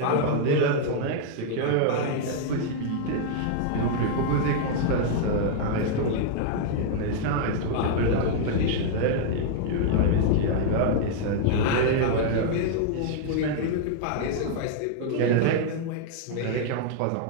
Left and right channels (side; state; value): both; different; correlation -0.01